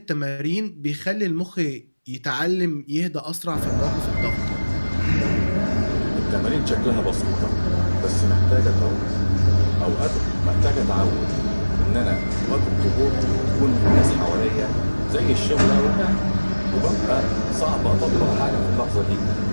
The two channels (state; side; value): inverted; both; correlation -1.00